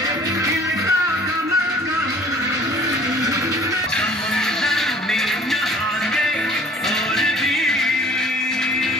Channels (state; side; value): normal; both; correlation 0.51